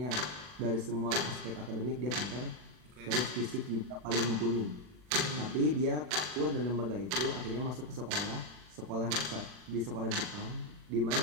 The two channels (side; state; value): left; late; 40 ms